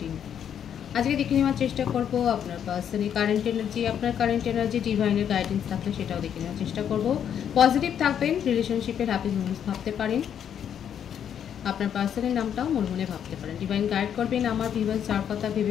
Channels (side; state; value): right; quieter; 8.9 dB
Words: আজকে দেখে নেওয়ার চেষ্টা করব আপনার পার্সনের কারেন্ট এনার্জি, আপনার কারেন্ট এনার্জি ডিভাইনের গাইডেন্স থাকলে সেটাও দেখে নেওয়ার চেষ্টা করব। পজিটিভ থাকবেন, রিলেশনশিপের হ্যাপি মোমেন্টস ভাবতে পারেন, আপনার পার্সনের নামটাও মনে মনে ভাবতে পারেন। ডিভাইন গাইড করবেন আমার ভিউয়ার্স যার কথা